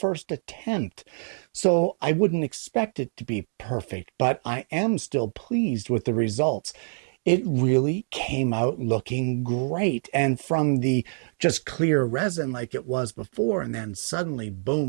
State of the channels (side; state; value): left; silent; digital silence